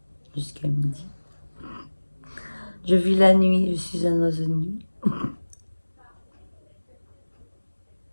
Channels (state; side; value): inverted; both; correlation -1.00